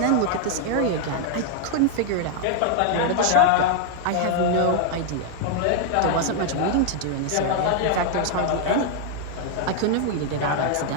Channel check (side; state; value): both; different; correlation 0.00